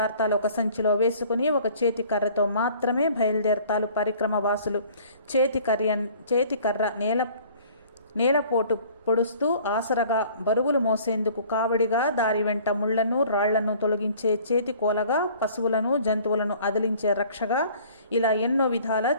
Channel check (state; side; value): inverted; both; correlation -0.52